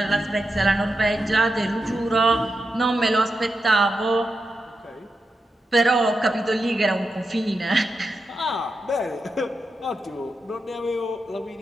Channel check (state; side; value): normal; both; correlation 0.88